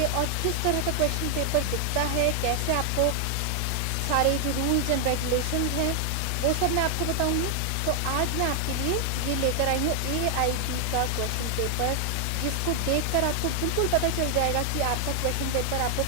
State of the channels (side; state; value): both; different; correlation 0.00